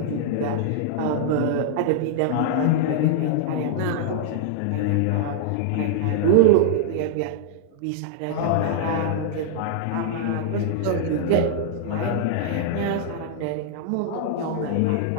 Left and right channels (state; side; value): different; both; correlation -0.01